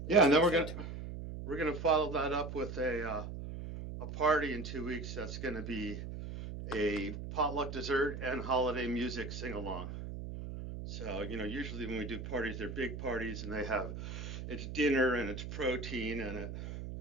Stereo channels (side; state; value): right; noise; hum, 7 dB below the sound